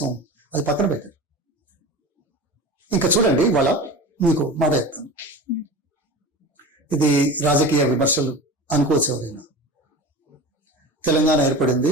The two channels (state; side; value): normal; both; correlation 0.32